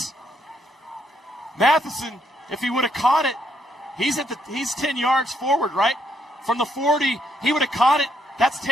Matheson, if he would have caught it, he's 10 yards forward, right? From the 40, he would have caught it. That's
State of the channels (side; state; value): both; normal; correlation 0.74